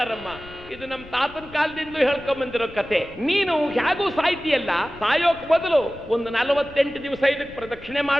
ಇದು ನಮ್ಮ ತಾತನ ಕಾಲದಿಂದ ಹೇಳ್ಕೊಂಡ್ ಬಂದಿರೋ ಕತೆ. ನೀನು ಹೇಗೂ ಸಾಯ್ತಿಯಲ್ಲ, ಸಾಯೋಕ್ ಬದಲು ಒಂದು 48 ದಿವಸ ಇದಕ್ಕೆ ಪ್ರದಕ್ಷಿಣೆ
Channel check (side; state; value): left; noise; rumble, 19 dB below the sound